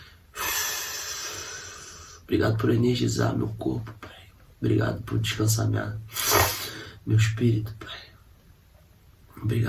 Obrigado por energizar meu corpo, Pai. Obrigado por descansar meu espírito, Pai.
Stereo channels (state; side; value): identical; both; correlation 1.00